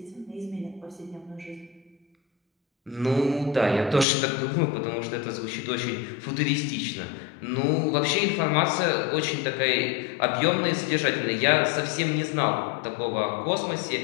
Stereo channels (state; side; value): drops out; right; at 4.0 s